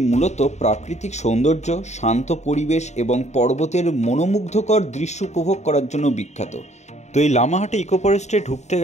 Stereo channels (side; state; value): right; late; 0.33 ms